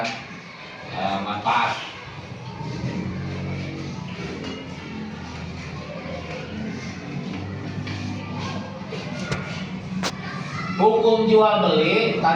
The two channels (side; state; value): both; identical; correlation 1.00